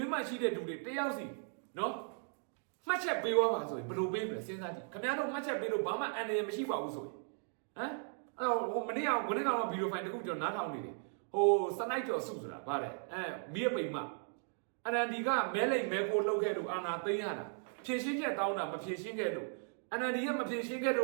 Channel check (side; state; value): left; silent; 53 dB below the other